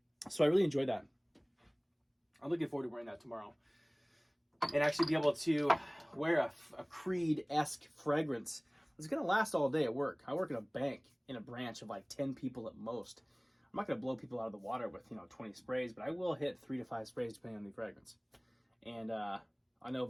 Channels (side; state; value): both; identical; correlation 1.00